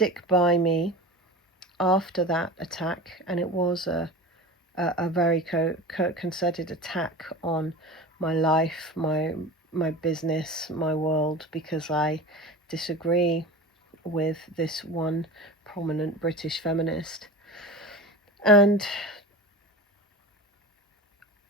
by me after that attack, and it was a very concerted attack on my life, my business, my world, because I disagree with this one prominent British feminist, and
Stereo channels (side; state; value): both; normal; correlation 0.32